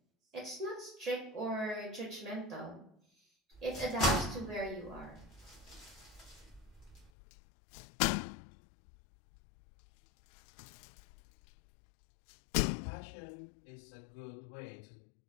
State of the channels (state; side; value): drops out; right; at 7.1 s